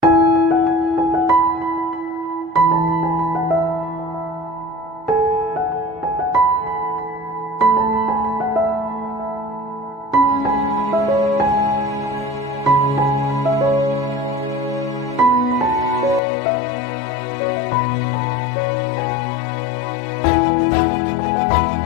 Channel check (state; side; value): drops out; right; at 16.2 s